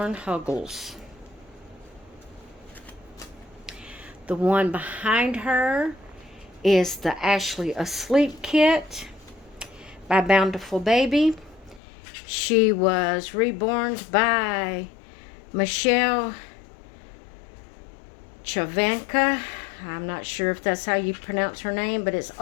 Huggles. The one behind her is the Ashley Asleep kit by Bountiful Baby. She was reborn by Michelle Chavanka. I'm not sure if that's how you pronounce her name, but it's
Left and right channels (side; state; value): right; drops out; at 11.8 s